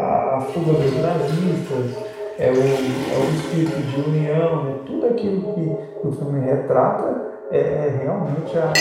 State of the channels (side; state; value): both; identical; correlation 1.00